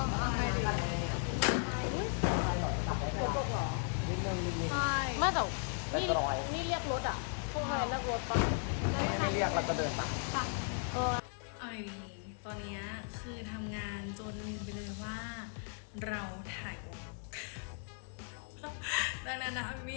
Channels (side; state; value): right; silent; 54 dB below the other